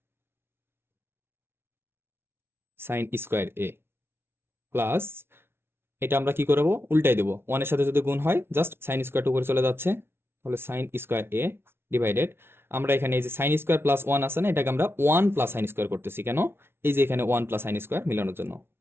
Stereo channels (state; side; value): late; left; 0.12 ms